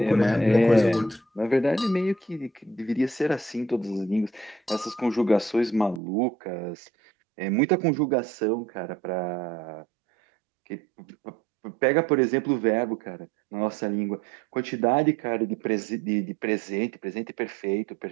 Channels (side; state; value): left; drops out; at 6.0 s